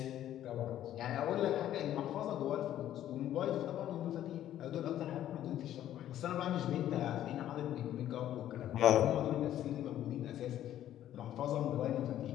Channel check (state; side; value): quieter; right; 12.0 dB